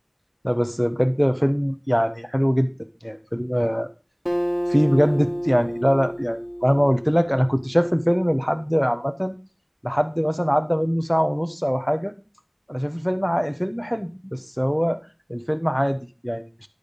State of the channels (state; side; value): identical; both; correlation 1.00